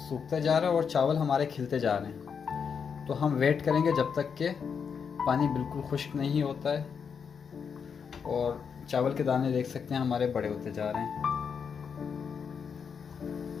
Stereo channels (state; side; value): quieter; right; 6.5 dB